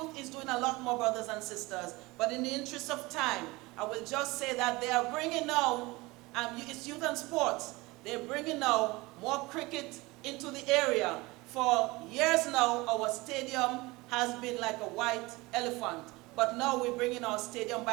is doing a lot more, brothers and sisters, but in the interest of time, I will just say that they are bringing now, it's youth and sports, they're bringing now more cricket into the area. For years now, our stadium has been like a white elephant, but now we're bringing our stadium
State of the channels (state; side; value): quieter; left; 22.4 dB